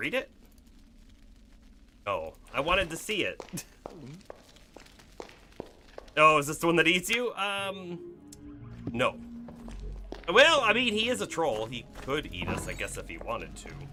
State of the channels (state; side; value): identical; both; correlation 1.00